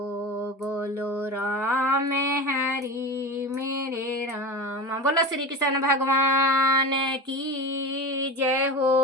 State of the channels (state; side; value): normal; both; correlation 0.28